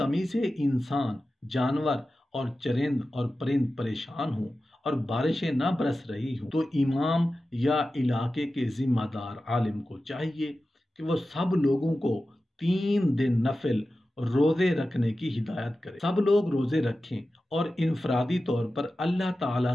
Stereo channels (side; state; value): both; normal; correlation 0.94